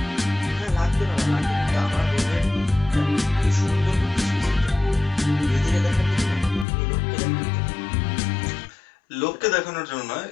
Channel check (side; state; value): right; drops out; at 6.7 s